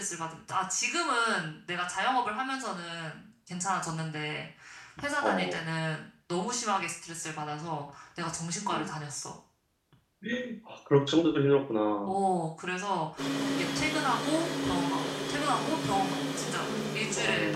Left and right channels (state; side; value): identical; both; correlation 1.00